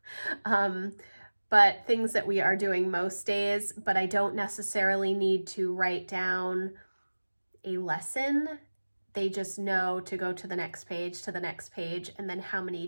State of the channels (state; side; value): inverted; both; correlation -1.00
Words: But things that we are doing most days, but I don't necessarily need to write down a lesson. They just know to go to the next page, and then how many